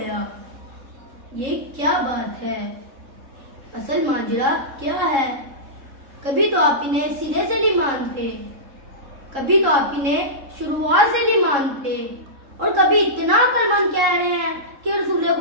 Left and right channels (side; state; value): left; late; 3.7 ms